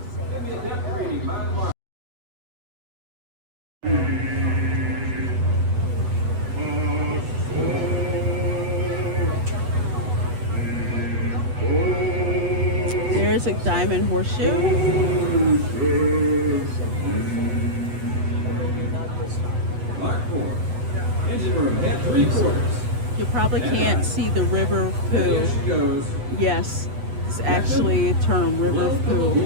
There's a diamond horseshoe. Mark 4. Engine room at 3/4. You probably can't see the river of poo. There she goes. Yes, it's actually a term, river of poo.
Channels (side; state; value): left; late; 8.1 ms